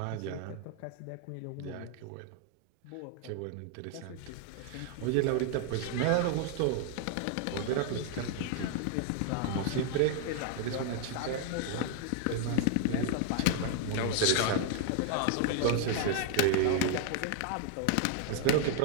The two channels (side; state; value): both; different; correlation 0.00